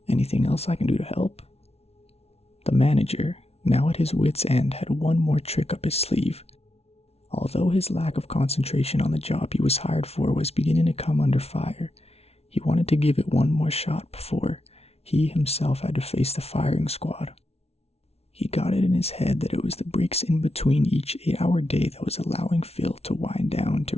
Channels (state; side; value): late; right; 0.30 ms